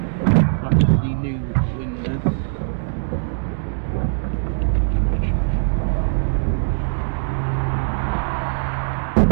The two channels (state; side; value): silent; left; digital silence